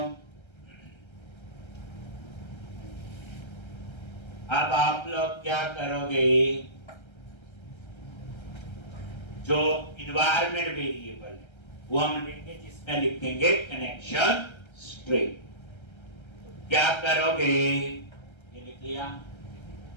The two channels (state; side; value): late; right; 1.3 ms